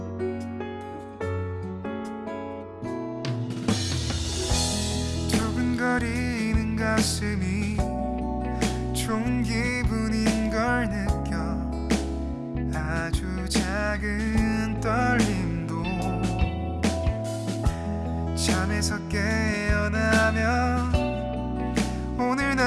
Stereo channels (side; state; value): both; identical; correlation 1.00